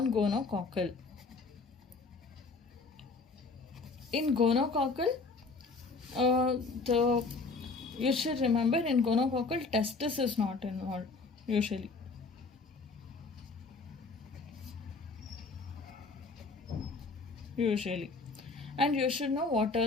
In gonococcal, you should remember, in gonococcal testis is not involved usually. And you should know what are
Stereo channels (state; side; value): quieter; right; 4.0 dB